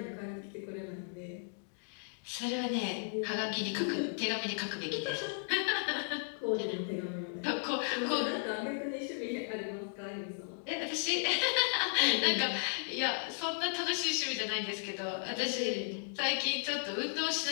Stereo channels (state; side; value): silent; right; digital silence